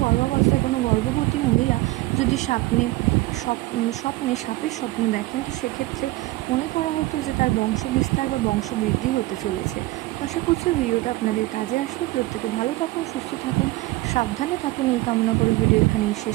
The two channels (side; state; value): left; quieter; 19.1 dB